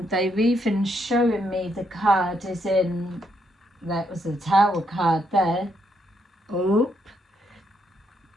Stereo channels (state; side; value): normal; both; correlation 0.76